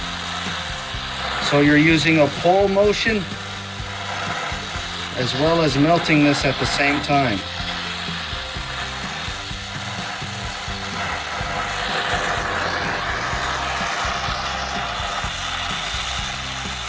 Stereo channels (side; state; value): both; identical; correlation 1.00